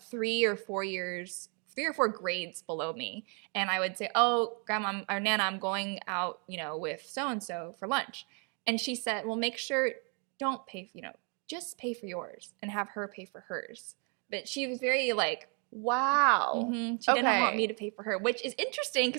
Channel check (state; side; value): quieter; left; 37.5 dB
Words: 3 or 4 grades below me. And I would say, oh, grandma or nana, I'm going out, with so and so for lunch. And she said, well, make sure, don't pay, just pay for yours and have her pay for hers. But she was very like, Wow. she didn't want me Okay. to pay for her, which is interesting